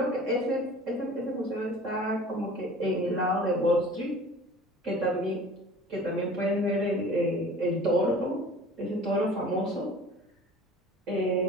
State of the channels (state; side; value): normal; both; correlation 0.44